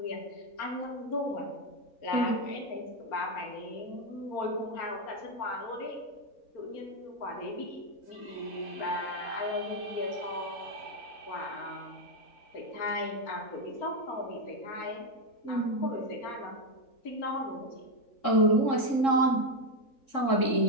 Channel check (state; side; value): late; right; 3.7 ms